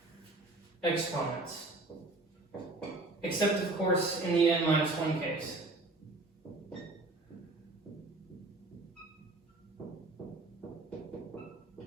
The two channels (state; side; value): quieter; left; 3.0 dB